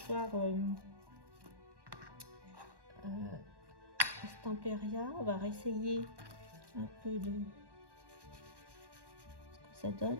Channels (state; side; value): late; left; 1.2 ms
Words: Stamperia. On va réessayer un peu de ce que ça donne